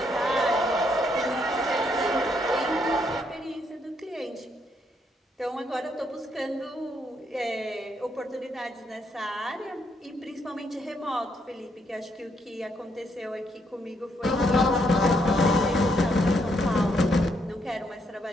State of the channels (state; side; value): normal; both; correlation 0.74